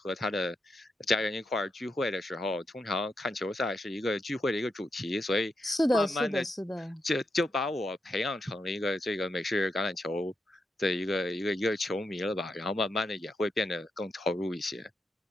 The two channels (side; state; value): both; normal; correlation 0.85